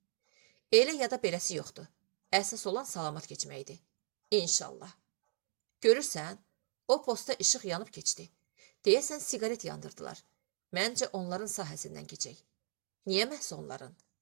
Elə ya da beləsi yoxdur. Əsas olan salamat keçməkdir. İnşallah. Görürsən, o posta işıq yanıb keçdi. Deyəsən siqaret yandırdılar. Məncə onların sahəsindən keçək. Niyə məhz onların?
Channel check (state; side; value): silent; left; digital silence